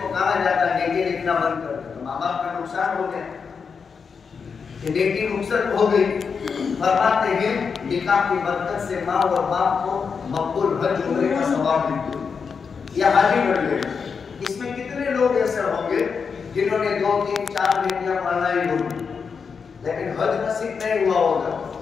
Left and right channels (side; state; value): right; quieter; 5.8 dB